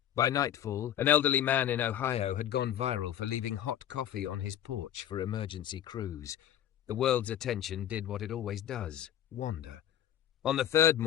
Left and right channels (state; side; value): quieter; right; 11.1 dB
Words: By nightfall, an elderly man in Ohio had gone viral for leaving hot coffee on his porch for emergency crews. The world's attention did what it always does, wander. On the third